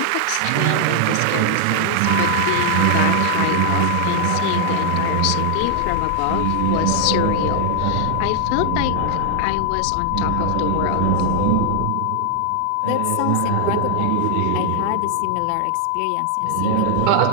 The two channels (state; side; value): different; both; correlation 0.00